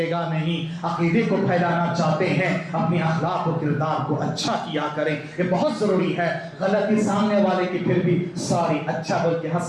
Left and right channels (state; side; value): identical; both; correlation 1.00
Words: گا نہیں. عقیدے کو پھیلانا چاہتے ہیں، اپنی اخلاق و کردار کو اچھا کیا کریں. یہ بہت ضروری ہے. غلطی سامنے والے کی پھر بھی سوری اچھا بول کے